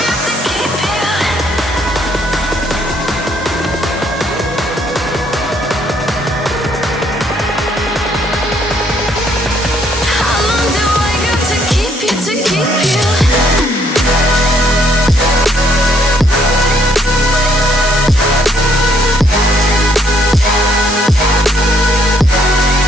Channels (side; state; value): both; normal; correlation 0.68